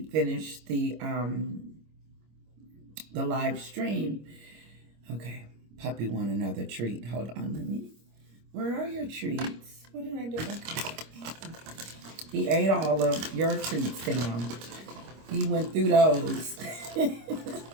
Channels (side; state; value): left; late; 25 ms